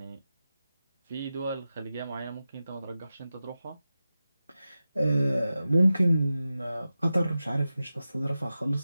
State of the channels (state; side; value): inverted; both; correlation -0.93